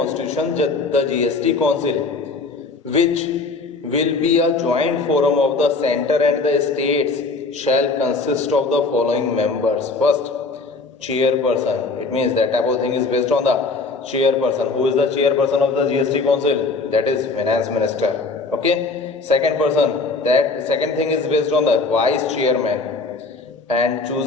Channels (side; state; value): right; quieter; 3.8 dB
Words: the GST council, which will be a joint forum of the center and the states, shall consist of the following members. First, chairperson. It means that type of thing is based on the chairperson. Who is the chairperson of the GST council? That is finance minister. Okay. Second person, that second thing is based on the vice chairman, and